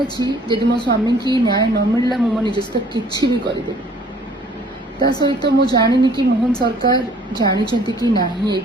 जदि मो स्वामी की न्याय न मिलला मो निज सहित किसी भी करदे। ता सहित मु जानी कि मोहन सरकार जानी कि ना ए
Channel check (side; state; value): both; normal; correlation 0.56